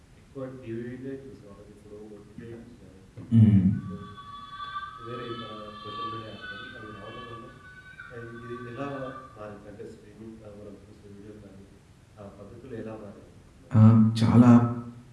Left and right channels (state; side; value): identical; both; correlation 1.00